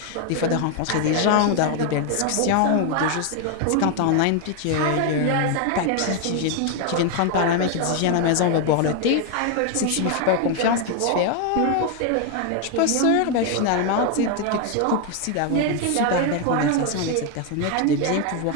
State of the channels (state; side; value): different; both; correlation 0.01